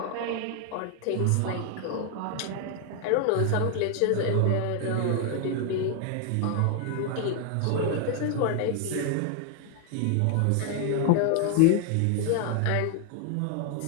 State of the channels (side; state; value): both; different; correlation 0.00